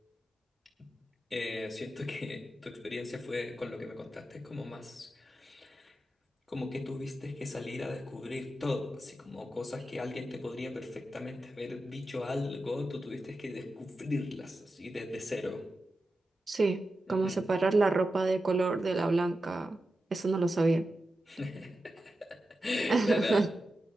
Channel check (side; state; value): both; normal; correlation 0.91